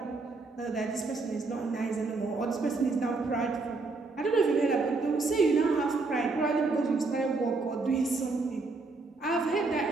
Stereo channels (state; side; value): quieter; left; 3.7 dB